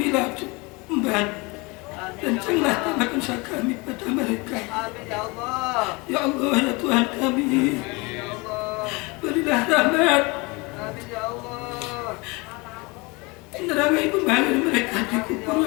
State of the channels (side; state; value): right; quieter; 26.7 dB